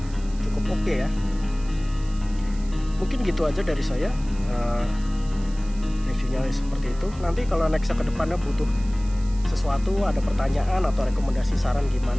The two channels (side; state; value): right; noise; hiss, 22 dB below the sound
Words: cukup oke ya. Mungkin gitu aja dari saya. Reviewnya seperti itu. Nanti kalau nextnya ke depannya butuh sesuatu, ada pertanyaan atau rekomendasi saran